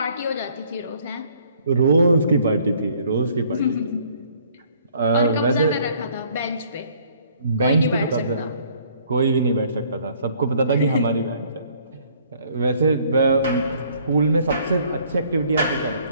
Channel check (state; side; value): inverted; both; correlation -0.60